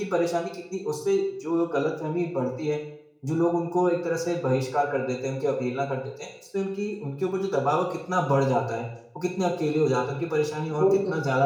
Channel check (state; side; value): identical; both; correlation 1.00